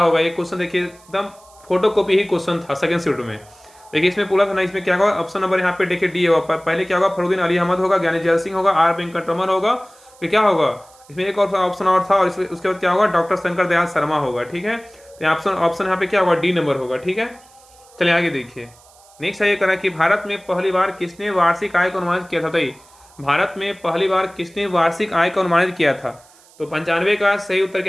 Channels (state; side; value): noise; right; hiss, 27 dB below the sound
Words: ये क्वेश्चन। देखिए एकदम फोटो कॉपी ही क्वेश्चन था सेकेंड शिफ्ट में। देखिए इसमें पूरा था ना, इसमें क्या होगा, ऑप्शन नंबर यहाँ पे देखिए डी होगा। पहले क्या होगा, फरुद्दीन अली अहमद होगा, ज्ञानी जैल सिंह होगा, आर वेंकटरमन होगा, फिर क्या होगा, इसमें एक और ऑप्शन और था, और उसके बाद क्या होगा, डॉक्टर शंकर दयाल शर्मा होगा। ठीक है। तो ऑप्शन यहाँ पे क्या होगा, डी नंबर होगा। ठीक है। चलिए आगे देखिए नेक्स्ट है ये करा कि भारत में पहली बार किसने वार्षिक आय को अनुमानित किया था। बताइए भारत में पहली बार किसने वार्षिक आय को अनुमानित किया था। तो 95 का सही उत्तर